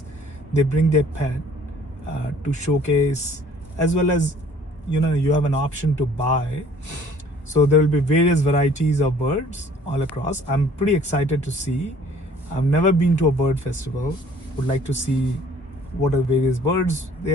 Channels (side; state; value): both; normal; correlation 0.54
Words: they bring their pet to showcase, as well as you have an option to buy. So there will be various varieties of birds all across. I'm pretty excited to see. I've never been to a bird festival. Would like to see what are various birds